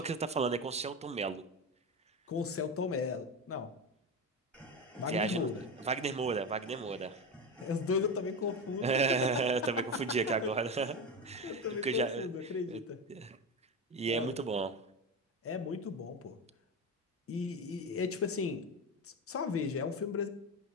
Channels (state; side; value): normal; both; correlation 0.19